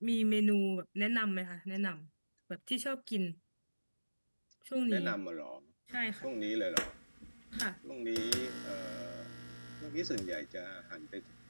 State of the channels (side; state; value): both; inverted; correlation -1.00